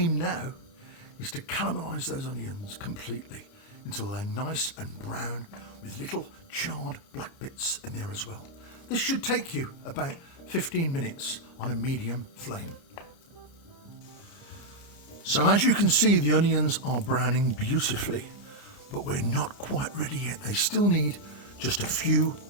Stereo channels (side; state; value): right; late; 29 ms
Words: now is to caramelise those onions completely until they're nice and brown with little charred black bits in there as well. This should take you about 15 minutes on a medium flame. So as you can see, the onions are browning beautifully, but we're not quite ready yet. They still need just a few